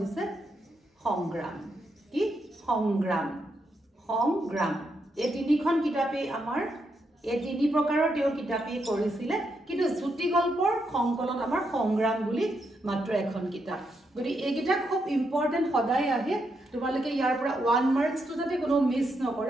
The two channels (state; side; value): normal; both; correlation 0.81